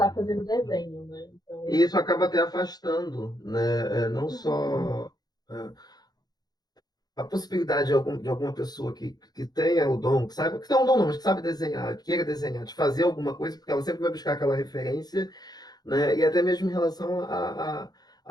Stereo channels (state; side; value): late; right; 0.19 ms